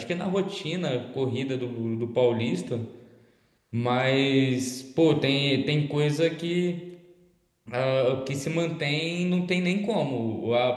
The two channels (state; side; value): identical; both; correlation 1.00